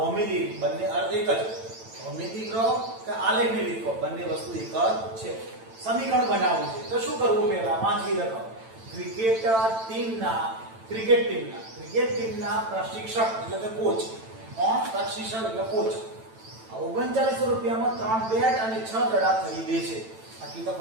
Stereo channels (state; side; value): late; left; 9.0 ms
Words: બંને અર્થ એક જ. ભૌમિતિક રહો કે આલેખની રીત કહો, બંને વસ્તુ એક જ છે. સમીકરણ બનાવવું છે તો શું કરવું? પહેલા વાંચી રાખો. ક્રિકેટ ટીમના પ્રશિક્ષક એટલે કે કોચ. કોણ? પ્રશિક્ષક એટલે કોચ. 3900 રૂપિયામાં 3 બેટ અને 6 દડા ખરીદે છે. આટલી તો